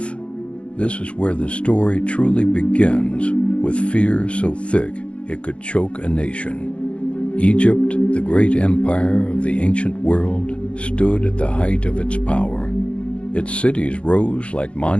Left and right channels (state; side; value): late; right; 0.060 ms